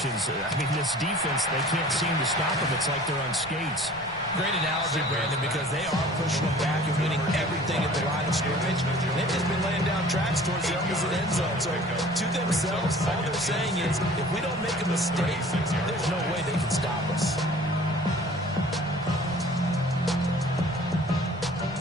I mean, this defense, they can't seem to stop them. It's like they're on skates. Great analogy, Brandon, because they are pushing them back and winning everything at the line of scrimmage. They've just been laying down tracks towards the opposite end zone. So to themselves, all they're saying is, if we don't make a mistake, there's no way they can stop us.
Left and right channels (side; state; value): right; noise; rumble, 20 dB below the sound